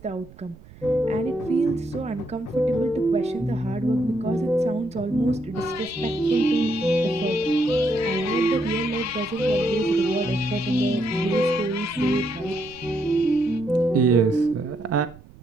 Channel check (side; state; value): right; noise; rumble, 22 dB below the sound